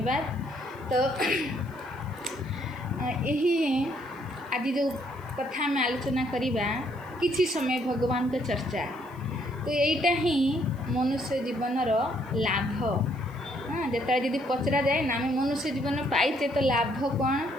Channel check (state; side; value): noise; left; hiss, 29 dB below the sound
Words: तो यही आज जो कथा में आलोचना करिबा किसी समय भगवान का चर्चा। तो यहीटा ही मनुष्य जीवनर लाभ। हाँ, जिते यदि पचरा जाए ना आम मनुष्य जीवन पाइचे तो लाभ कौन।